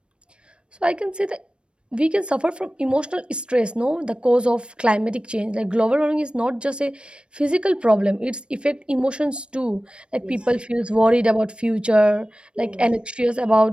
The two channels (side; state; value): left; late; 0.056 ms